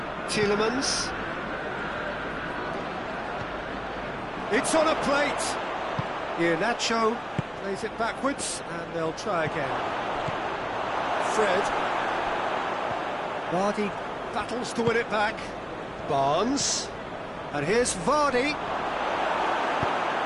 Tielemans. It's on a plate. Iheanacho plays it backwards and they'll try again. Fred. Vardy battles to win it back. Barnes. And here's Vardy.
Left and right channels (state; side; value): identical; both; correlation 1.00